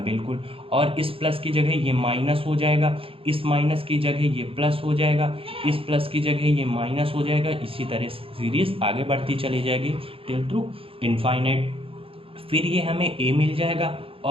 बिल्कुल। और इस प्लस की जगह ये माइनस हो जाएगा, इस माइनस की जगह ये प्लस हो जाएगा, इस प्लस की जगह ये माइनस हो जाएगा। इसी तरह सीरीज आगे बढ़ती चली जाएगी टिल टू इनफाइनाइट। फिर ये हमें ए मिल जाएगा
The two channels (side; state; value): left; late; 0.27 ms